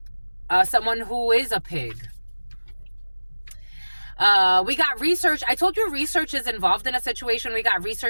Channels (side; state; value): both; inverted; correlation -1.00